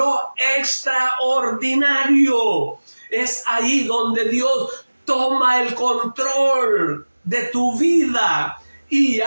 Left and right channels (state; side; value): inverted; both; correlation -1.00